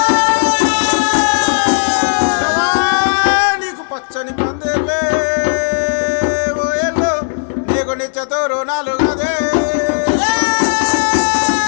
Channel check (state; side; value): silent; right; digital silence